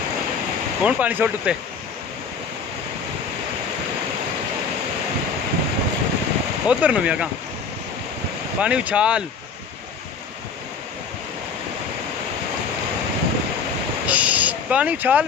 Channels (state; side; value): quieter; right; 5.6 dB